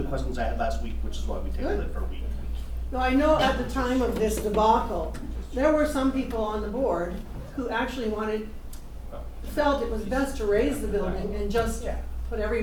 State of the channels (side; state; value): both; identical; correlation 1.00